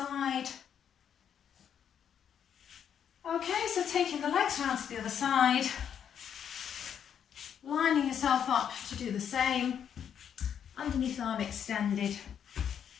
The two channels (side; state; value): right; quieter; 8.5 dB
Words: Okay, so taking the legs round to the other side, lining yourself up to do the same, underneath arm extended,